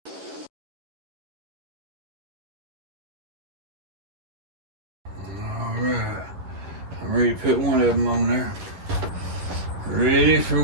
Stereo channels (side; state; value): left; late; 10 ms